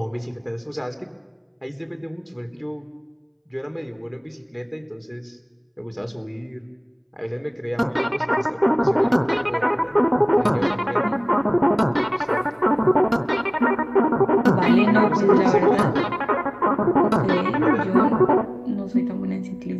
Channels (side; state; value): both; identical; correlation 1.00